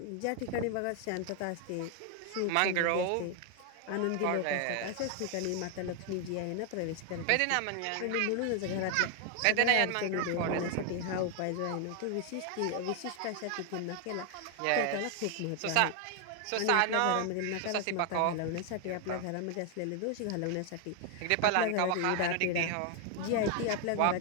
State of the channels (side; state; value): both; different; correlation 0.01